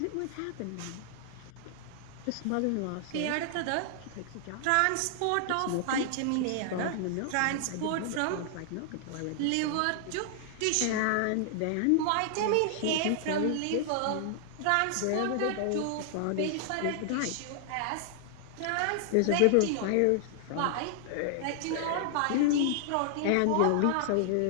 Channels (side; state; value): both; different; correlation -0.01